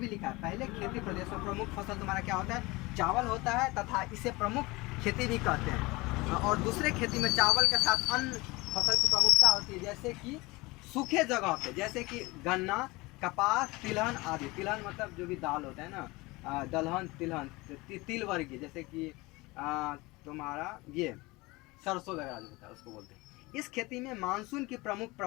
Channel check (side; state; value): right; quieter; 22.9 dB